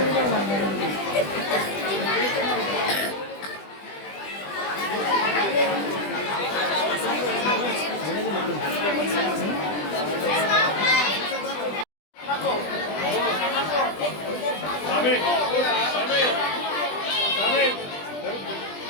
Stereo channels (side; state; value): right; late; 20 ms